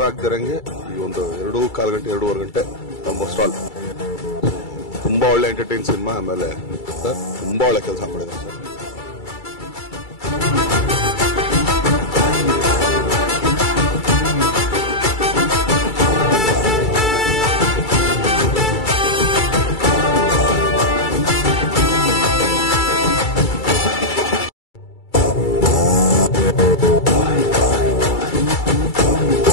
ಆಗದಿರಂಗೆ ಈ ಒಂದು 2.25 ಗಂಟೆ 2.5 ಗಂಟೆ ಆಲ್ಮೋಸ್ಟ್ ಆಲ್ ತುಂಬಾ ಒಳ್ಳೆ ಎಂಟರ್ಟೈನ್ ಸಿನಿಮಾ. ಆಮೇಲೆ ಸರ್ ತುಂಬಾ ಒಳ್ಳೆ ಕೆಲಸ ಮಾಡಿದ್ದಾರೆ ಸರ್.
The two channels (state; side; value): late; right; 2.3 ms